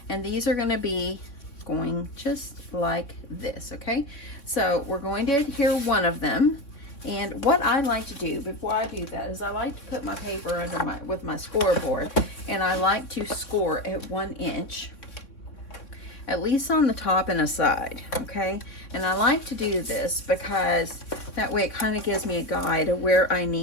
and these are gonna be going just like this, okay? So we're going to adhere one of them, and what I like to do before I do that is I like to put my paper under with my scoreboard, and I like to score at 1 inch. At least on the top and a side, okay? And I like to do this because that way it kind of gives me a guide of where I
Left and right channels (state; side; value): late; right; 3.6 ms